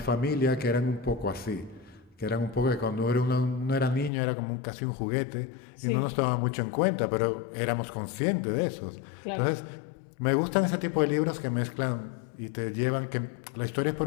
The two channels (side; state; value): right; drops out; at 4.1 s